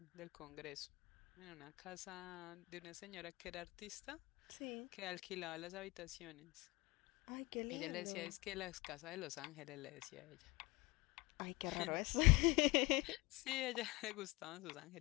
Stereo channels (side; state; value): right; quieter; 23.8 dB